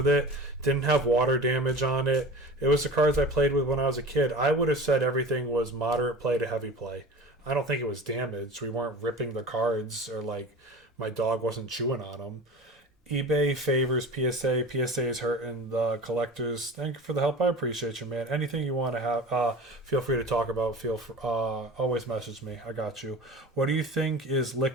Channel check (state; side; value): normal; both; correlation 0.36